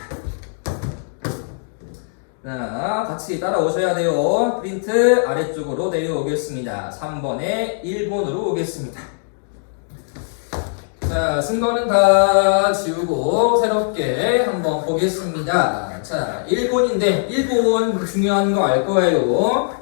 자, 같이 따라오셔야 돼요. 프린트 아래쪽으로 내려오겠습니다. 3번에 일본으로 오겠습니다. 자, 쓴 거는 다 지우고 새롭게 한번 보겠습니다. 자, 일본인데 일본 중요한 거 알 거예요.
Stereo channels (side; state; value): right; silent; digital silence